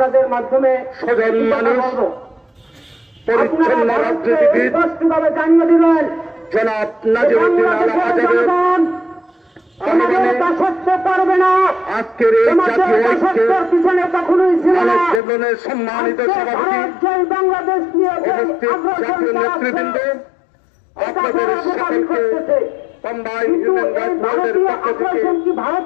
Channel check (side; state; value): right; drops out; at 15.2 s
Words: মাধ্যমে সজন মানুষ পরিচ্ছন্ন রাজনীতিবিদ স্পষ্টভাবে জানিয়ে দিলেন জনাব নাজিরউদ্দিন আল আজাদের পারবে না। আজকের এই জাতীয় ঐক্যের পিছনে কখনোই ছিল না। জীবনের সম্মানিত সভাপতি বাংলাদেশ নিয়ে উপস্থিত জাতীয় নেতৃবৃন্দ আপনাদের সকলকে কম্বাইন হিউম্যান রাইটস ওয়াচের পক্ষ থেকে ভারত